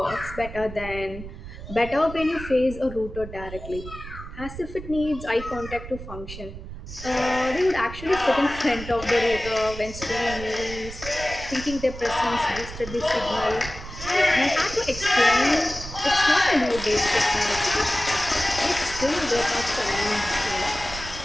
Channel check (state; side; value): noise; right; rumble, 12 dB below the sound